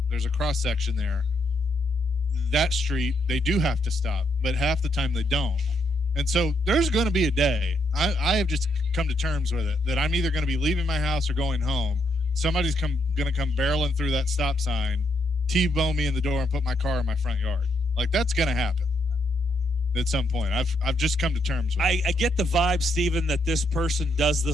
cross section there. That street, they do have to stop, but half the time they don't. And so there's going to be a day. I have just come to terms with it that I'm either going to be leaving my house or going home. Somebody's going to come barreling through that stop sign, T-bone me in the door, and put my car in my front yard. Like, that's going to happen. at some point. I've just come to terms with it. I get the vibe, Steven, that this person does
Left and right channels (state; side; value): normal; both; correlation 0.76